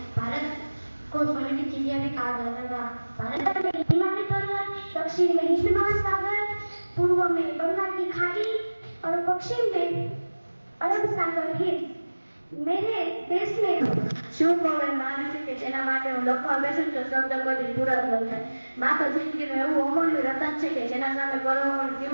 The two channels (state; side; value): inverted; both; correlation -1.00